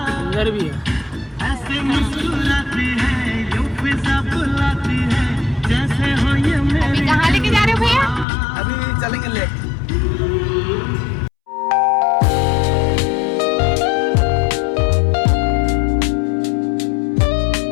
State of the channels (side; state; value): right; drops out; at 8.2 s